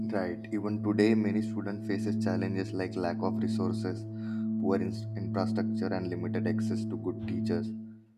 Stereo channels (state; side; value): identical; both; correlation 1.00